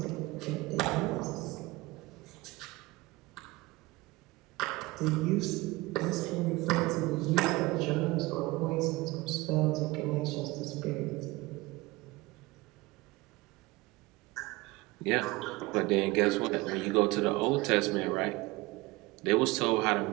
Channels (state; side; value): quieter; left; 21.5 dB